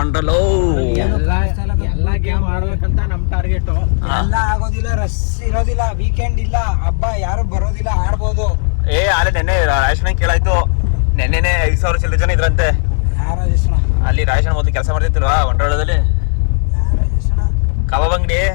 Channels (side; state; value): right; silent; digital silence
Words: ಎಲ್ಲ ಗೇಮ್ ಆಡ್ಬೇಕಂತ ನಮ್ ಟಾರ್ಗೆಟ್. ಎಲ್ಲ ಆಗೋದಿಲ್ಲ, ರಶ್ ಇರೋದಿಲ್ಲ, ವೀಕೆಂಡ್ ಇಲ್ಲ, ಹಬ್ಬ ಯಾರು ಬರೋದಿಲ್ಲ, ಆಡ್ಬೋದು. ಅಲ್ಲೇ ನೆನ್ನೆ ರಾಜೇಶನ ಕೇಳಾಯ್ತು. ನೆನ್ನೆನೆ 5,000 ಚಿಲ್ಲರೆ ಜನ ಇದ್ರಂತೆ ಅಲ್ಲಿ. ರಾಜೇಶನ ಮೊದಲು ಕೆಲಸ ಮಾಡ್ತಿರ್ತಿಲ್ವಾ ವಂಡರ್ಲಾದಲ್ಲಿ, ಕಬಾಬ್ ಅಂಗಡಿ.